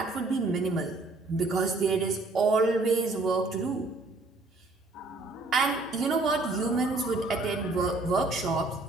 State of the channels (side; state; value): left; quieter; 3.2 dB